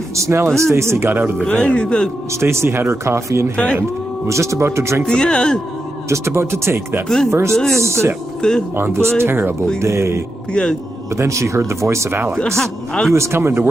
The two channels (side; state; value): both; normal; correlation 0.87